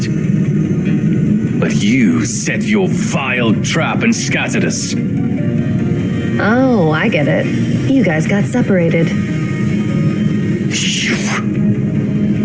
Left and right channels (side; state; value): both; identical; correlation 1.00